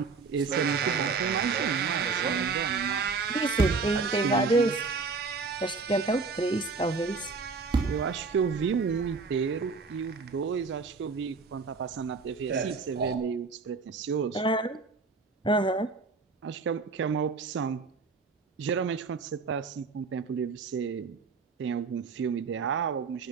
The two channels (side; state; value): left; quieter; 4.4 dB